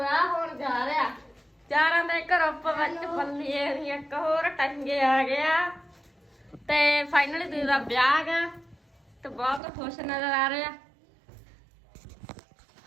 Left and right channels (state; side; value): drops out; left; at 9.6 s